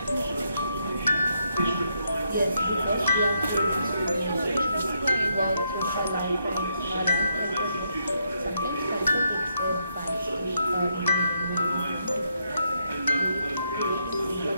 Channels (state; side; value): inverted; both; correlation -0.77